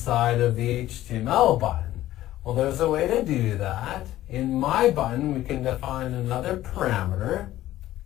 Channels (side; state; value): right; quieter; 14.4 dB